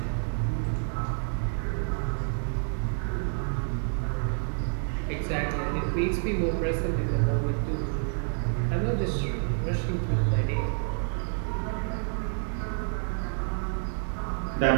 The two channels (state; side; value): silent; left; 59 dB below the other